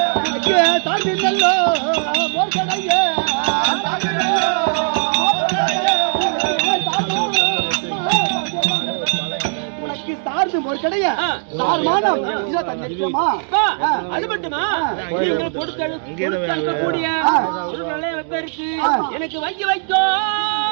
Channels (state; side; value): silent; left; digital silence